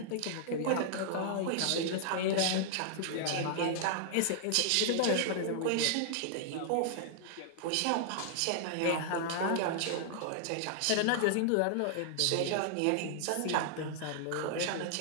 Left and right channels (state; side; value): different; both; correlation 0.00